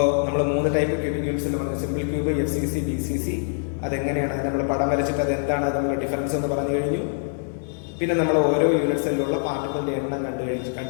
നമ്മൾ 3 ടൈപ്പ് ക്യൂബിക് യൂണിറ്റ്സിൽ പറഞ്ഞു. Simple cube, FCC, BCC. അതെങ്ങനെയാണ് നമ്മൾ പടം വരച്ചിട്ട് അത് എന്താണ് നമ്മൾ ഡിഫറൻസ് എന്ന് പറഞ്ഞു കഴിഞ്ഞു. പിന്നെ നമ്മൾ ഓരോ യൂണിറ്റ് സെല്ലിലുള്ള പാർട്ടിക്കിളിന്റെ എണ്ണം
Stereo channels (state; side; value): silent; right; 62 dB below the other